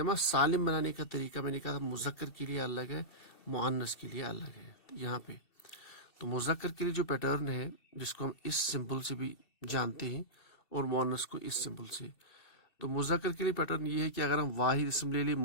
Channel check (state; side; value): late; right; 2.7 ms